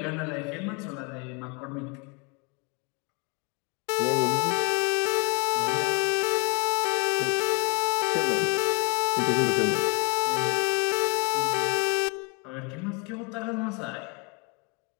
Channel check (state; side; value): quieter; right; 33.5 dB